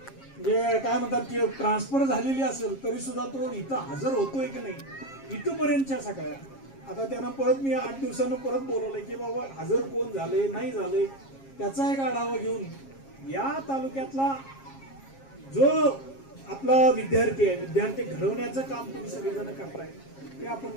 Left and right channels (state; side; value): late; right; 7.4 ms